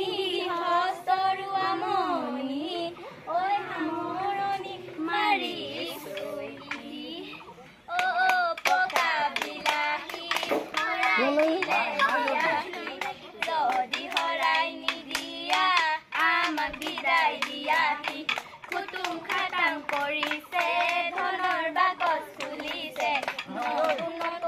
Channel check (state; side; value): identical; both; correlation 1.00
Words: হস্তৰু আমনি ঐ সামৰণি মাৰি পকা বিলাহী যদি হৰাই নিদিয়া আমাক বিদায় দিয়াহি কুটুম খাটাং কৰিছে ধনৰ বাকচ খুলিছে